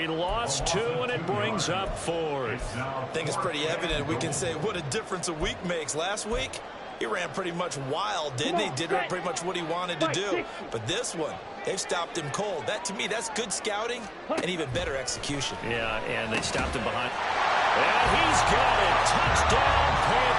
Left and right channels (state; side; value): identical; both; correlation 1.00